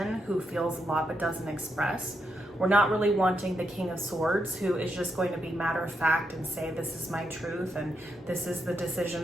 who feels a lot but doesn't express. We're not really wanting the King of Swords who is just going to be matter of fact and say, this is my truth and this is the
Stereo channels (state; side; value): normal; both; correlation 0.82